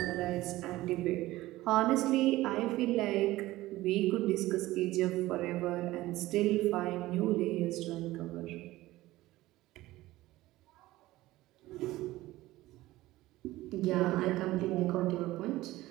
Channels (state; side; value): quieter; left; 17.4 dB